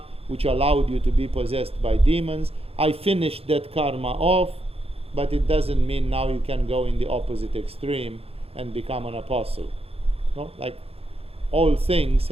which allowed you to be possessed by demons. I finished that karma off, but it doesn't mean now you can go in the opposite extreme and become an apostle. No? Like, all things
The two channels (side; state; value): left; late; 0.28 ms